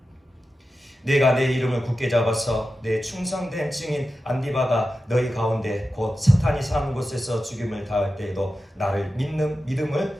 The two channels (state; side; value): normal; both; correlation 0.92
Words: 내가 내 이름을 굳게 잡아서 내 충성된 증인 안디바가 너희 가운데 곧 사탄이 사는 곳에서 죽임을 당할 때에도 나를 믿는